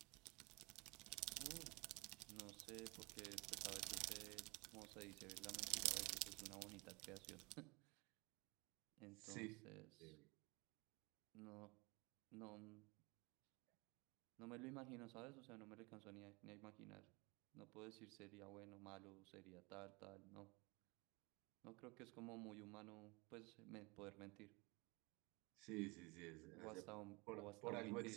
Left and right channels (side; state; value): left; quieter; 26.9 dB